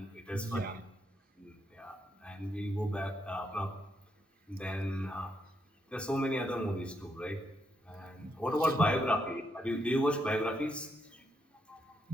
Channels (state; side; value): normal; both; correlation 0.79